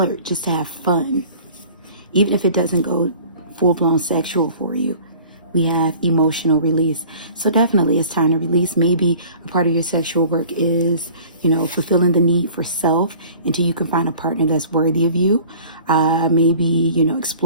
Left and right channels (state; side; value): inverted; both; correlation -0.48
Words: just to have fun, even if it doesn't go full-blown sexual for you. We have emotional release. So definitely it's time to release. Maybe a part of your sexual work is, fulfilling the need for self until you can find a partner that's worthy of you. Maybe,